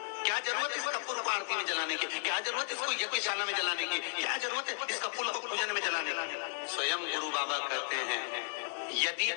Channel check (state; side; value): silent; right; 55 dB below the other